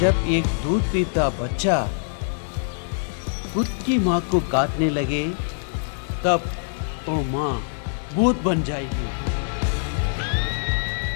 एक दूध पीता बच्चा खुद की माँ को काटने लगे, तब वो माँ भूत बन जाएगी।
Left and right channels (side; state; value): right; silent; digital silence